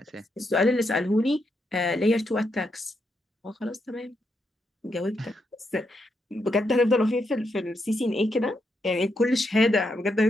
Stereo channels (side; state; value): both; normal; correlation 0.81